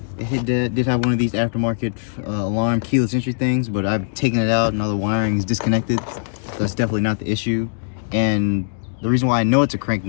It did have one of these aftermarket alarm keyless entry things, but I've taken it out and all the wiring is disconnected. So that's definitely not the issue. And the reason why I know it's a crank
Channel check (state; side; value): silent; right; digital silence